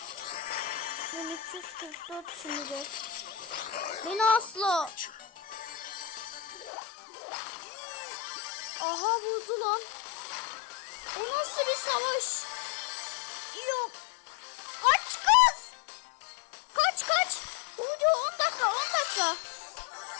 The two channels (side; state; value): right; drops out; at 6.7 s